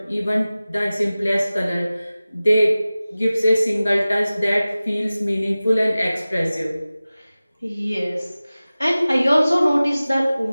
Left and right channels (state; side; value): inverted; both; correlation -0.97